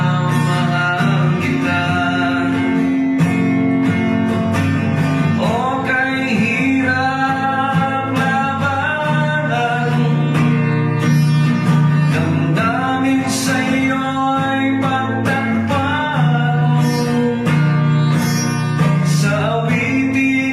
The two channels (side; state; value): both; identical; correlation 1.00